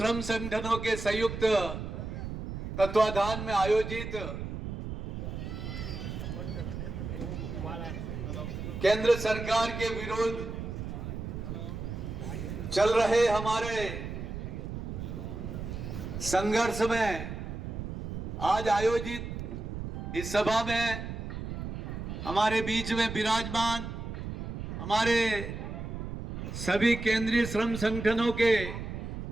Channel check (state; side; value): noise; right; rumble, 6 dB below the sound